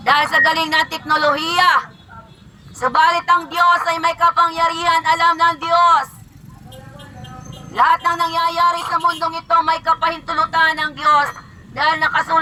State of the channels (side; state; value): both; identical; correlation 1.00